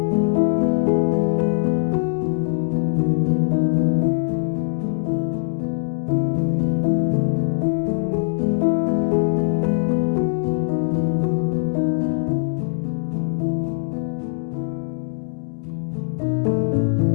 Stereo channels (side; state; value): right; silent; 65 dB below the other